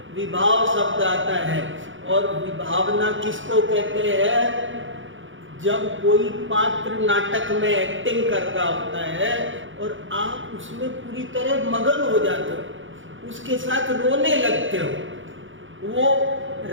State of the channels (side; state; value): left; late; 0.56 ms